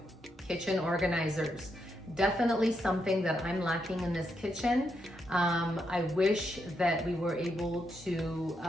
kitchen organizers. Definitely something that I'm lacking in this kitchen. I wish that we were able to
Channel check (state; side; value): normal; both; correlation 0.81